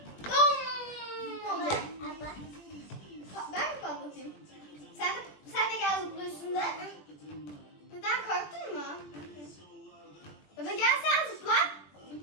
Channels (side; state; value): right; late; 20 ms